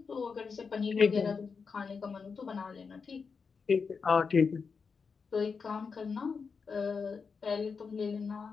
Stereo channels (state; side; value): quieter; right; 5.4 dB